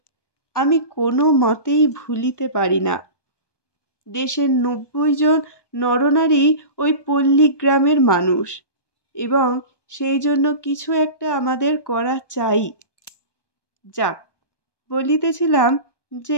আমি কোনো মতেই ভুলিতে পারি না, দেশের 90 জন নরনারী ওই পল্লীগ্রামের মানুষ, এবং সেই জন্য কিছু একটা আমাদের করা চাই। যাক, বলিতেছিলাম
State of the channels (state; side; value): late; right; 1.2 ms